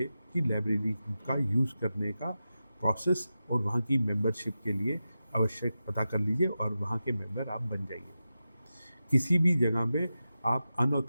की लाइब्रेरी का यूज़ करने का प्रोसेस और वहाँ की मेंबरशिप के लिए आवश्यक पता कर लीजिए और वहाँ के मेंबर आप बन जाइए। किसी भी जगह पे आप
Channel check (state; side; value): inverted; both; correlation -0.92